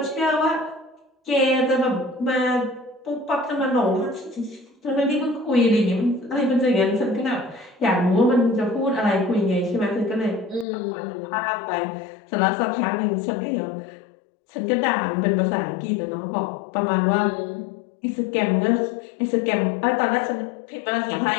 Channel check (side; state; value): right; drops out; at 10.7 s